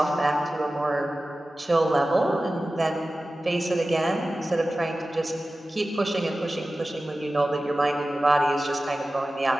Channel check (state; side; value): normal; both; correlation 0.95